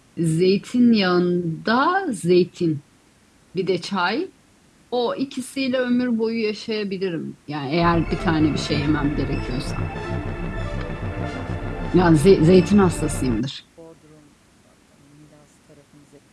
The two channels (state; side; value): identical; both; correlation 1.00